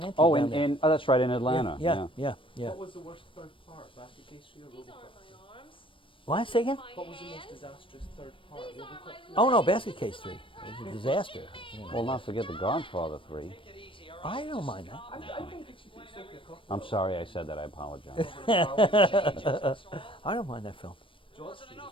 into Oh, you down there. oh, that's right, in Atlanta. Yeah. What was the worst third part? Basket Case 3 or These RoboCop? aren't my arms. What? Say again? My What was the most hands. disastrous third part? RoboCop 3? Oh no, Basket Case 3. It was a disaster. You know. Well, not forget the Godfather 3. I don't mind that. I don't think you should take Sophia Coppola. I'm sorry I said that. I apologize. I don't mind that film. George Street was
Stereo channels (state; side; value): late; right; 0.25 ms